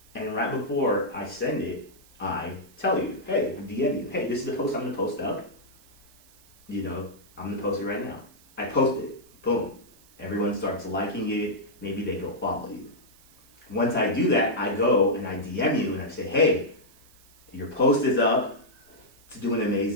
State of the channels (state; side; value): noise; right; hiss, 27 dB below the sound